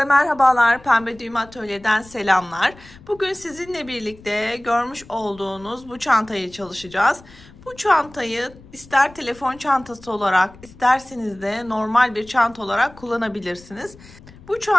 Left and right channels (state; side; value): noise; left; rumble, 22 dB below the sound